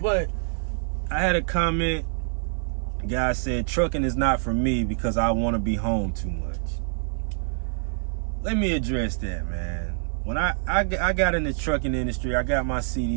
I had a comment. The guy said, trucking is not for me because I want to be home too much. Let me address that, man. When I got in the trucking industry, I got my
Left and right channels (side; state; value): left; silent; 61 dB below the other